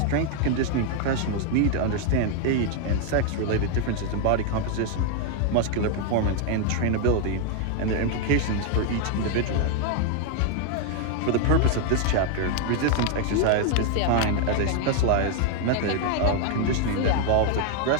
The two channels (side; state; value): both; different; correlation 0.00